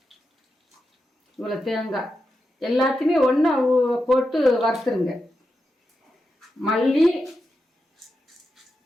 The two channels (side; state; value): both; normal; correlation 0.88